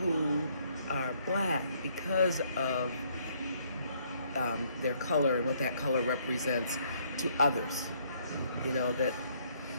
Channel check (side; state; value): both; inverted; correlation -0.67